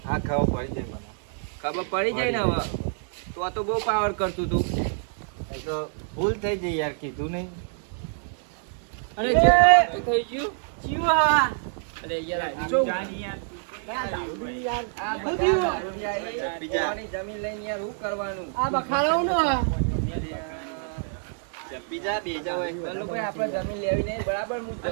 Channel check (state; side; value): silent; left; 60 dB below the other